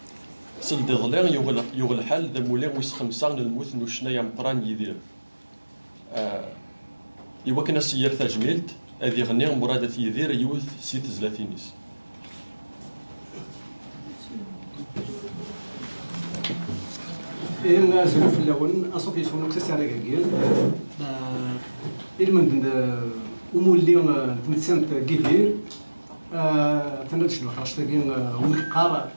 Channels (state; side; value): inverted; both; correlation -1.00